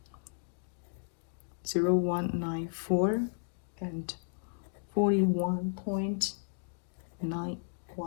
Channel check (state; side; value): silent; right; digital silence